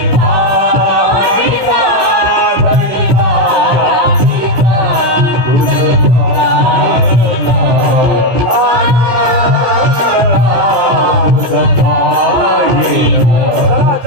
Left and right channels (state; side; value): late; left; 16 ms